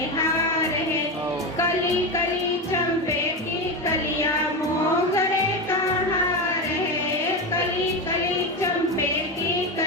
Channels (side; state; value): both; normal; correlation 0.17